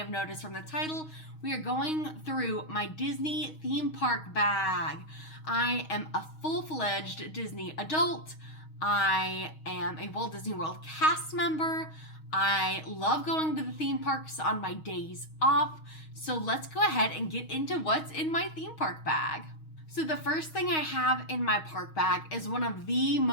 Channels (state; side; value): late; right; 6.4 ms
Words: noticed from the title, we are going through my Disney theme park bag. I am a full-fledged Disney adult. I am a Walt Disney World cast member. I love going to the theme parks on my days off. So let's go ahead and get into what's in my theme park bag. So the first thing I have in my park bag is one of the